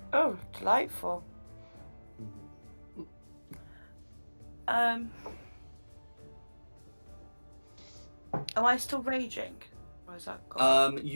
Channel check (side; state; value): both; inverted; correlation -1.00